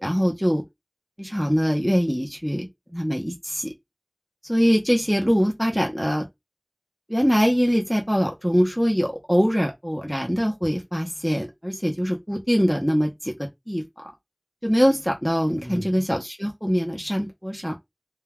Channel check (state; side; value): identical; both; correlation 1.00